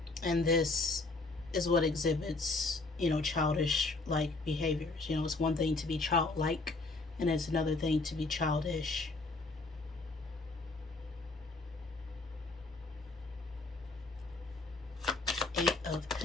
And this is what exhibits, childish like behaviors. It's one thing to be childlike, and it's another thing to be childish. Eight of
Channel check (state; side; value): quieter; right; 3.5 dB